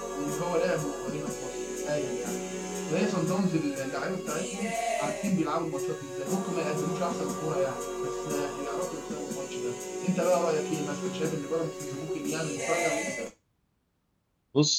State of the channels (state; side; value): identical; both; correlation 1.00